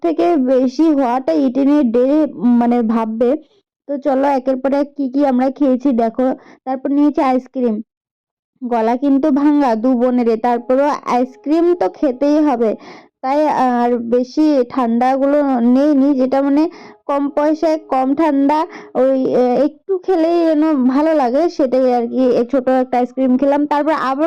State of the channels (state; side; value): identical; both; correlation 1.00